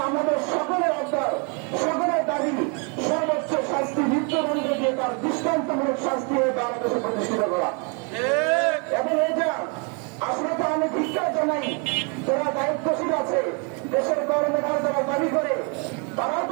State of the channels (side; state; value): left; quieter; 35.7 dB